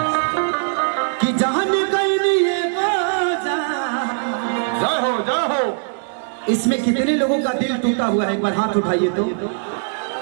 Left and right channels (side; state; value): left; silent; digital silence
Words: कि जान गई ये बाजा जय हो इसमें कितने लोगों का दिल टूटा हुआ है एक बार हाथ उठाइए तो